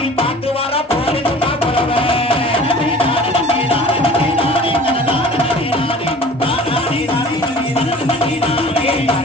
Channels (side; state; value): both; normal; correlation 0.45